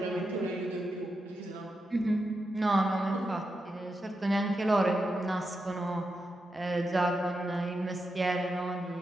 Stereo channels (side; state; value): both; normal; correlation 0.87